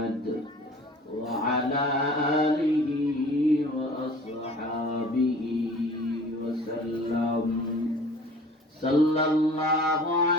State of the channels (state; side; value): normal; both; correlation 0.46